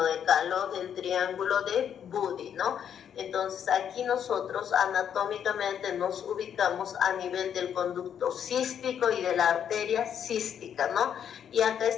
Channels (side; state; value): right; quieter; 8.7 dB